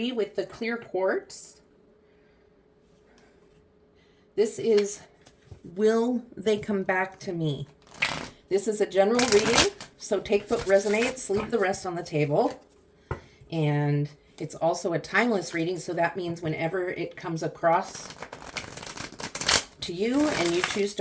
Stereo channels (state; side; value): identical; both; correlation 1.00